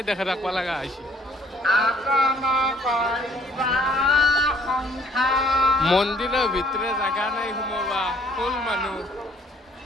দেখে ৰাখিব লগা হৈছে মন্দিৰৰ ভিতৰে জাগা নাই সোমাবা ফুল মানুহ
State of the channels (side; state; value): both; normal; correlation 0.60